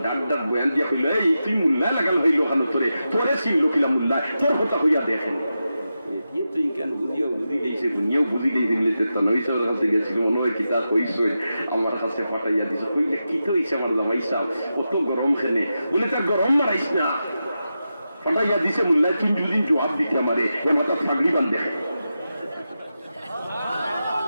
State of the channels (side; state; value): both; inverted; correlation -0.90